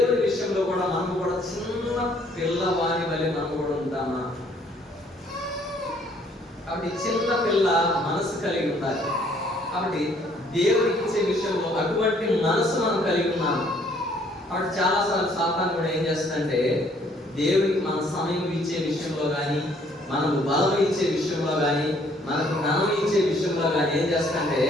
విషయంలో కూడా మనం కూడా చిన్న పిల్లవాని వల్ల మనం కూడా ఉంటామా? కాబట్టి చిన్న పిల్ల మనసు కలిగి ఉండాలి. కాబట్టి దేవుడికి ఇచ్చే విషయంలో అటువంటి మనసు మనం కలిగి ఉన్నాము. కాబట్టి చాలాసార్లు సాతాను కూడా ఏం చేస్తుందంటే, దేవుడికి మన సమయం ఇచ్చే విషయంలో కానీ, మనకు బలం ఇచ్చే విషయంలో కానీ, మనకు జ్ఞానం ఇచ్చే విషయంలో కానీ ఏం చేస్తుందంటే,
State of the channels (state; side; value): normal; both; correlation 0.63